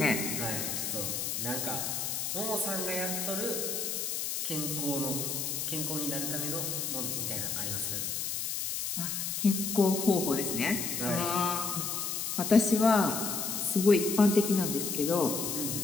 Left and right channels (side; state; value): left; noise; hiss, 2 dB below the sound